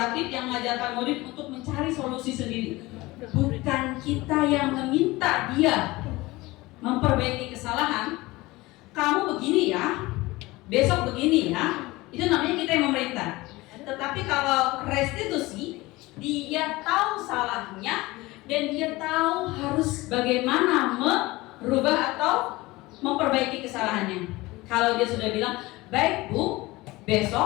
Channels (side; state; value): right; quieter; 20.5 dB